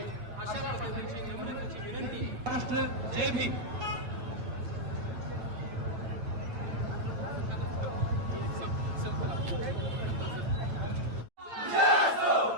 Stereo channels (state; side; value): late; left; 8.6 ms